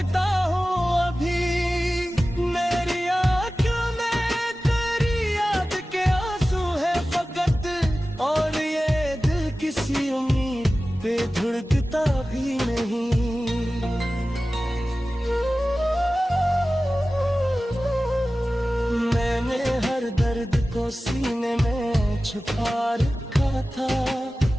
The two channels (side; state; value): both; normal; correlation 0.96